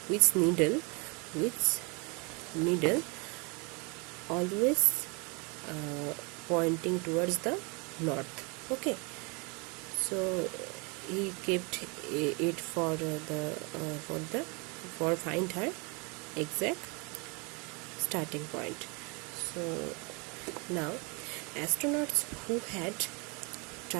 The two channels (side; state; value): left; quieter; 31.0 dB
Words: needle always pointing towards the north. Okay, so he kept it for find her exact starting point. So now astronauts who had